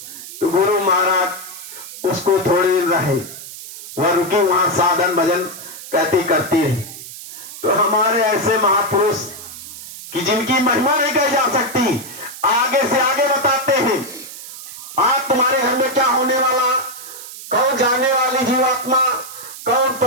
तो गुरु महाराज उसको थोड़ी देर रहे, वह रुकी वहां साधन भजन कहती करती रही। तो हमारे ऐसे महापुरुष कि जिनकी महिमा नहीं कही जा सकती, आगे से आगे बताते हैं आज तुम्हारे घर में क्या होने वाला, कौन जाने वाली जीवात्मा, कौन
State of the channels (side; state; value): right; noise; hiss, 13 dB below the sound